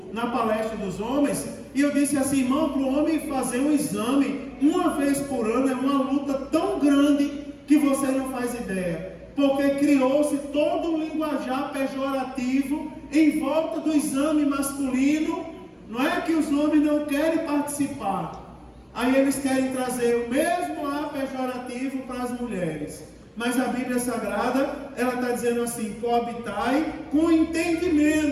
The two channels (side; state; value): both; identical; correlation 1.00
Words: na palestra dos homens, e eu disse assim, irmão, para o homem fazer um exame uma vez por ano é uma luta tão grande que você não faz ideia. Porque criou-se todo um linguajar pejorativo em volta do exame masculino. Não é que os homens não querem participar. Aí eles querem trazer o mesmo ar pejorativo para as mulheres. Mas a Bíblia Sagrada, ela está dizendo assim, coabitai com